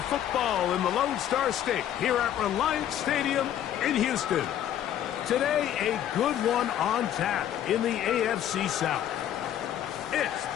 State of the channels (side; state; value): right; quieter; 10.9 dB